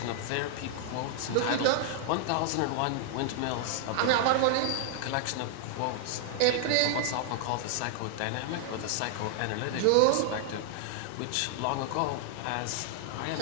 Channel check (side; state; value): both; different; correlation -0.01